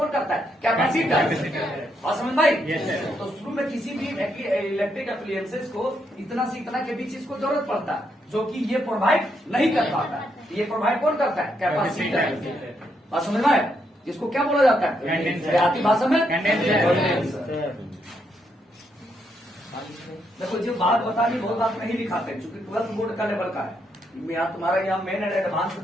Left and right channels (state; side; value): normal; both; correlation 0.78